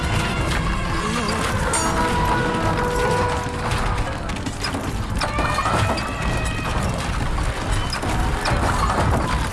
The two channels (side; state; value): both; identical; correlation 1.00